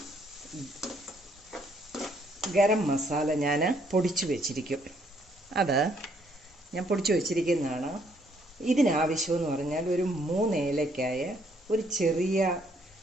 ഗരം മസാല ഞാൻ പൊടിച്ചു വെച്ചിരിക്കും, അത് ഞാൻ പൊടിച്ചു വെച്ചിരിക്കുന്നതാണ്. ഇതിനാവശ്യമെന്ന് പറഞ്ഞാൽ ഒരു 3 ഏലക്കായ, ഒരു ചെറിയ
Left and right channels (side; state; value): both; normal; correlation 0.68